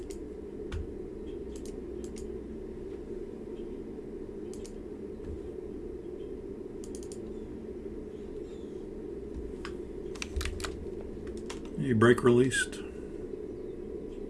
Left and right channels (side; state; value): both; identical; correlation 1.00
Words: A brake released.